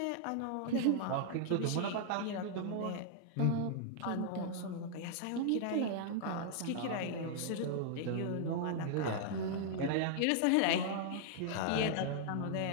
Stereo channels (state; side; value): different; both; correlation -0.01